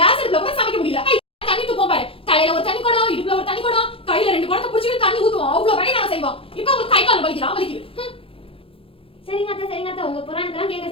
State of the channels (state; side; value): late; right; 0.27 ms